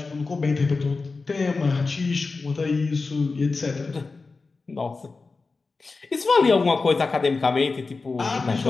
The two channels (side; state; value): right; quieter; 4.0 dB